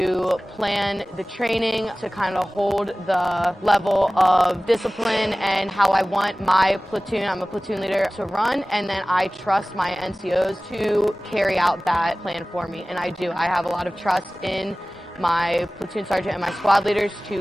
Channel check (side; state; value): both; normal; correlation 0.98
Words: plan the training, to kind of hold the level of discipline and how I want my platoon, I'm a platoon leader, to run, and then I trust my NCOs to carry out that plan for me, and I do. I have a lot of trust in my platoon sergeant and my squad leaders